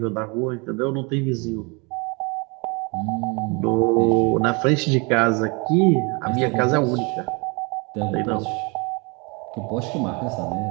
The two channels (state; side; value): quieter; left; 30.0 dB